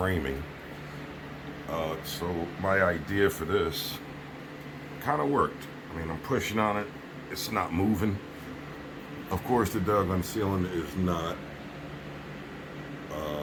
So my idea for this kind of worked. I mean, I'm pushing on it. It's not moving. Of course, the doggone ceiling is not.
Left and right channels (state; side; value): identical; both; correlation 1.00